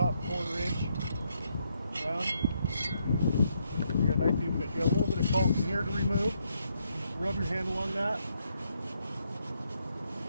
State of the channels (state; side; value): inverted; both; correlation -0.76